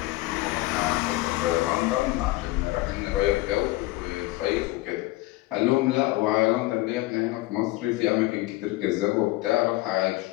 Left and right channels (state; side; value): quieter; right; 19.3 dB